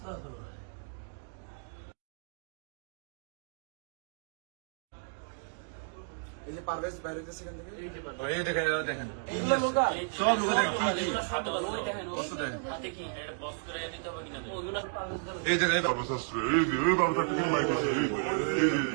এই যে পারভেজ বাইরে গেছে এখান থেকে এই দেখেন দেখেন এইগুলো লোকা সব লোক দেখেন ওই দেখেন কষ্ট দেখেন হাতে কি বস করে নিতে হবে কিনা ওইগুলো পারভেজ বলে এই দেখেন বাবুশাস্ত্র এই যে এই বাবুশাস্ত্র কিন্তু মাইক আছে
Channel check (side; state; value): left; silent; digital silence